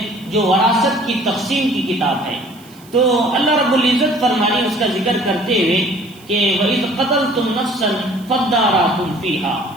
جو وراثت کی تقسیم کی کتاب ہے۔ تو اللہ رب العزت فرمانے اس کا ذکر کرتے ہوئے کہ وَإِذْ قَتَلْتُمْ نَفْسًا فَادَّارَأْتُمْ فِيهَا،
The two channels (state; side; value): noise; right; hiss, 25 dB below the sound